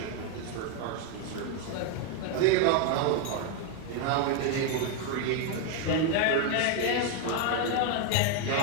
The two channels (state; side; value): different; both; correlation 0.01